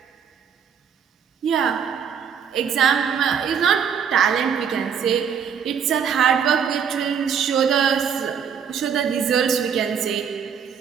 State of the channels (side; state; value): left; quieter; 7.5 dB